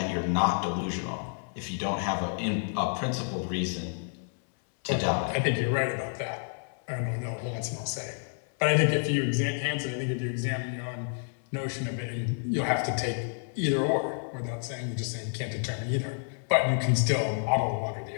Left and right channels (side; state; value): right; silent; 58 dB below the other